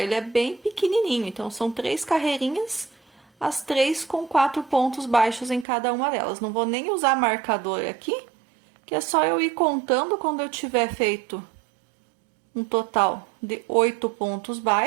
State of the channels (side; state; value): left; drops out; at 5.7 s